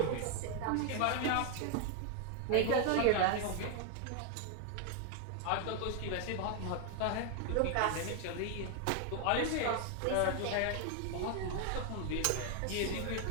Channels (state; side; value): different; both; correlation 0.00